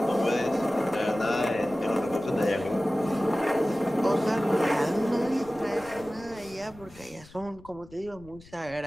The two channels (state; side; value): noise; left; rumble, 22 dB below the sound